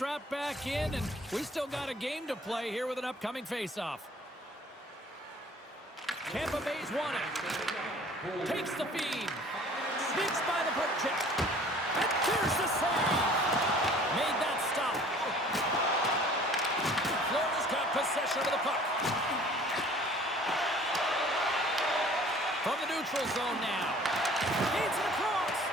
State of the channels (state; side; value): normal; both; correlation 0.50